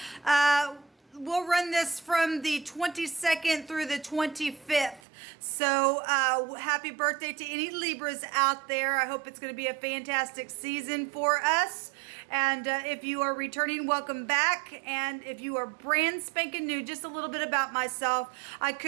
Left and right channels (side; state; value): left; drops out; at 5.0 s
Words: We'll run this from the 22nd through the 25th. So happy birthday to any Libras out there. I hope it's going to be a fantastic season for us. And if you are returning, welcome back. And if you are brand spanking new, just a little bit about myself. I